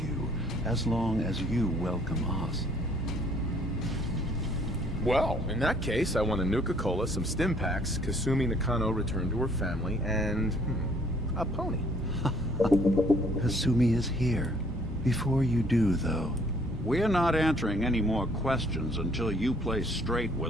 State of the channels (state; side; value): normal; both; correlation 0.61